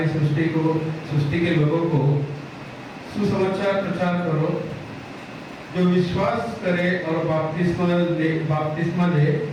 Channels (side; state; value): both; identical; correlation 1.00